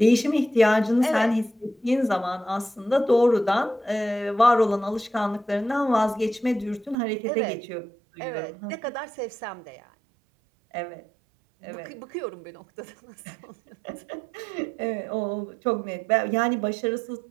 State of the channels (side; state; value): left; drops out; at 7.0 s